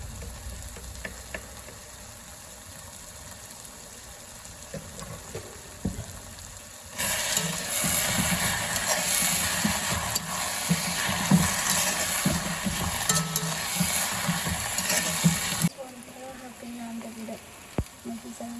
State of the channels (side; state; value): both; identical; correlation 1.00